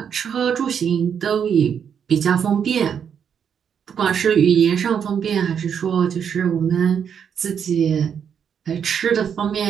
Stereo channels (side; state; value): left; quieter; 7.7 dB